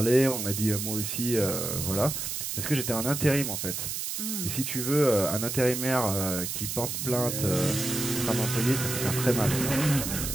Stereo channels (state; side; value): noise; right; hiss, 4 dB below the sound